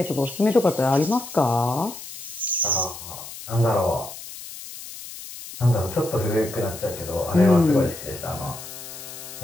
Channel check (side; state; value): left; noise; hiss, 13 dB below the sound